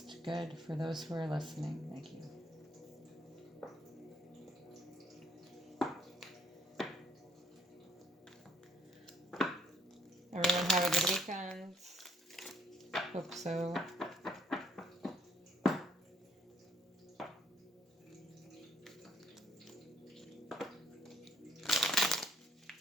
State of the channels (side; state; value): both; normal; correlation 0.66